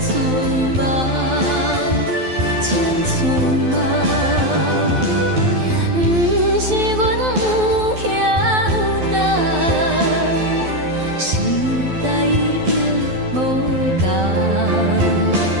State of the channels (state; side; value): late; left; 12 ms